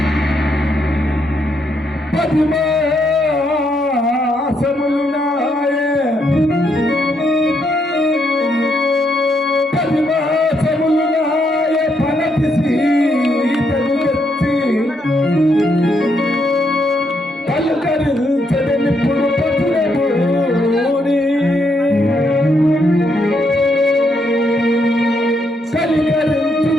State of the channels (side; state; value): both; normal; correlation 0.76